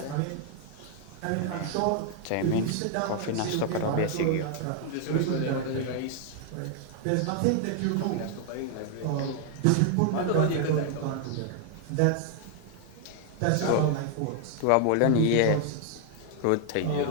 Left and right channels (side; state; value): both; different; correlation 0.00